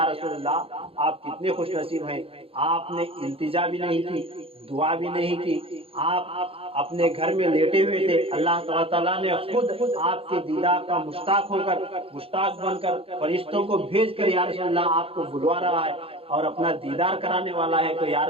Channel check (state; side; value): late; left; 0.27 ms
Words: رسول اللہ آپ کتنے خوش نصیب ہیں، آپ نے التجا بھی نہیں کی، دعا بھی نہیں کی، آپ اپنے گھر میں لیٹے ہوئے تھے، اللہ تعالیٰ نے خود آپ کے دیدار کا مشتاق ہو کر، مشتاق بن کر فرشتوں کو بھیج کر یا رسول اللہ آپ کو بلوا رہا ہے اور اپنا دیدار کرانے والا ہے، تو یا